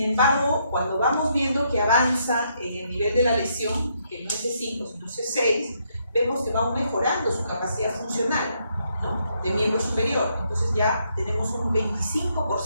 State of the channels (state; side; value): inverted; both; correlation -0.75